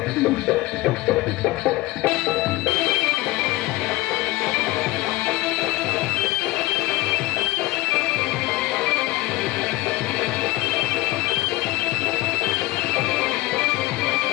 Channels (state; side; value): quieter; right; 19.1 dB